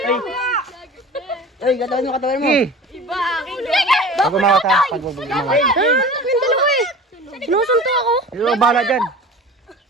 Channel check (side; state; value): both; normal; correlation 0.38